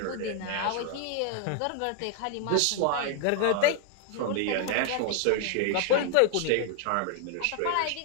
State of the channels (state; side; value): different; both; correlation 0.00